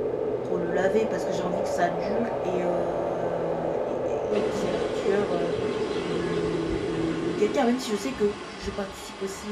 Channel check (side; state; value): both; identical; correlation 1.00